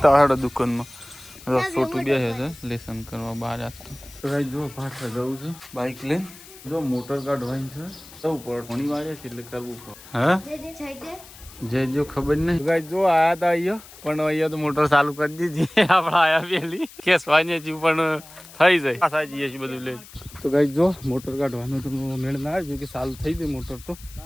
આવડે દુકાનમાં. છોટું બે છે લેસન કરવા બહાર આપતો. તો ગાઈઝ જો પાછળ જવું છે બાઇક લઈને. જો મોટર કાઢવાની છે, જવું પડે, ઘણી વાડીએ છે એટલે કરવું પડે. હા જે જો ખબર નહીં ગાઈઝ જો આયા હતા અહીંયા, પણ અહીંયા તો મોટર ચાલુ કરી દીધી આપણે આયા પેલી ખેસવાની હતી પણ થઈ જાય પાછા જઈએ છીએ બધું લઈને. તો ગાઈઝ જો મોટર કાઢવાનું તો મેળ ના આવ્યો કે ચાલુ થઈ ગઈ મોટર, તો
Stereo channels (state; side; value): noise; left; hiss, 19 dB below the sound